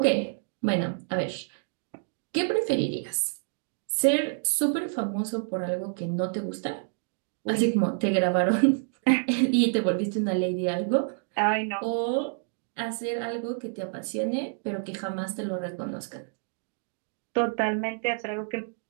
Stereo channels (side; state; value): left; silent; 59 dB below the other